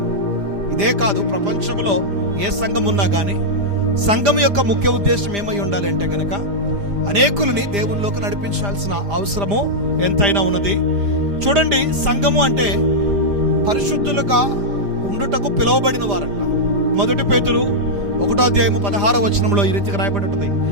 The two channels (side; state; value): left; late; 5.0 ms